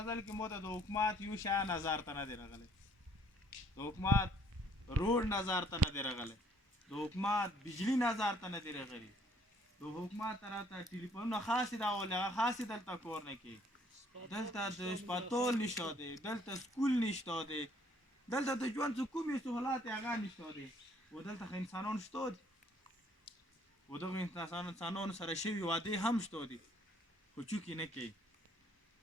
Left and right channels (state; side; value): normal; both; correlation 0.62